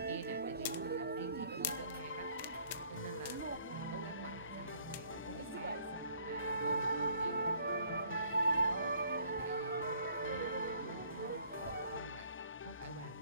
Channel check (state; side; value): inverted; both; correlation -0.60